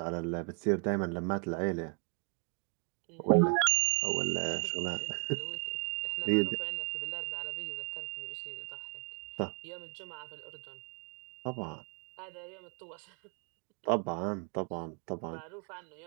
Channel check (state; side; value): quieter; left; 35.8 dB